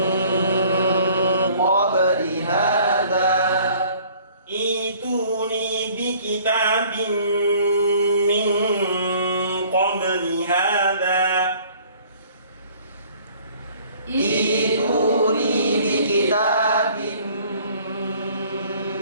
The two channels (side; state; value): both; inverted; correlation -0.54